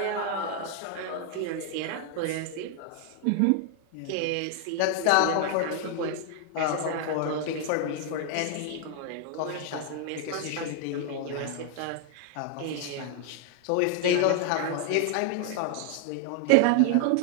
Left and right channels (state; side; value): different; both; correlation 0.00